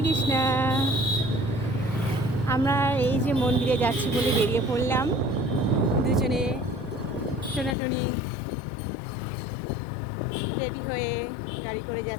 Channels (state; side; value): drops out; right; at 7.8 s